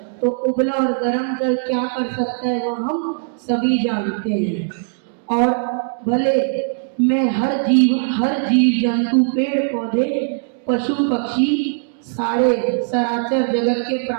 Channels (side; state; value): left; silent; digital silence